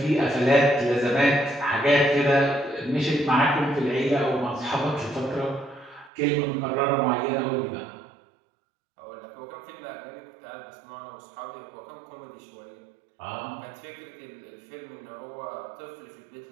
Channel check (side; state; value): left; drops out; at 6.1 s